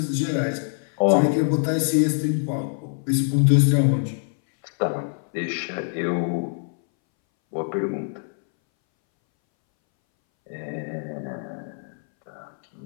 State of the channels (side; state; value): right; silent; 62 dB below the other